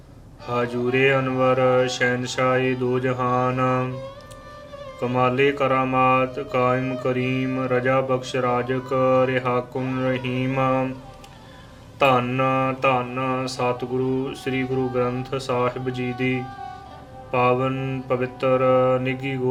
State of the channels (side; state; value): both; identical; correlation 1.00